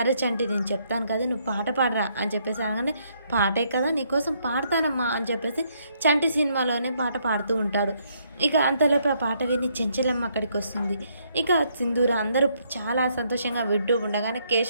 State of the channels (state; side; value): inverted; both; correlation -0.72